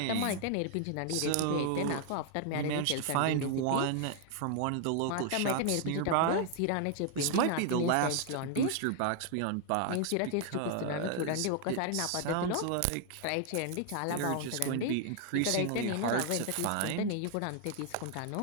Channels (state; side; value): different; both; correlation 0.00